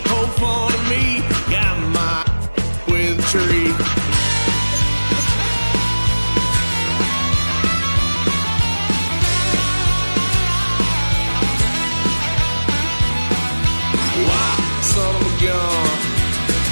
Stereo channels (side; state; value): both; inverted; correlation -1.00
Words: poked fun at me, got my with a tree. Why, son of a gun,